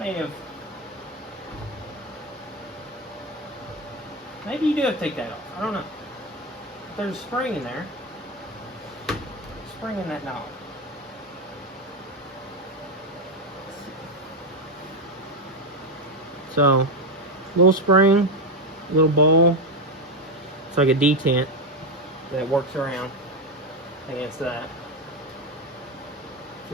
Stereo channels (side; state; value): both; normal; correlation 0.11